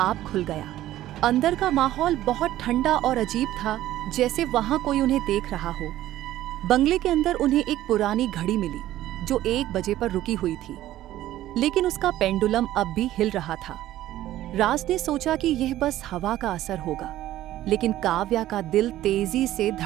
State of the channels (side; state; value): left; quieter; 14.1 dB